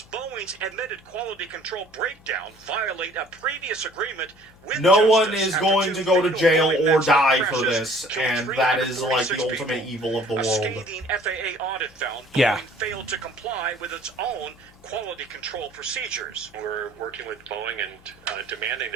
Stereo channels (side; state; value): left; noise; hum, 26 dB below the sound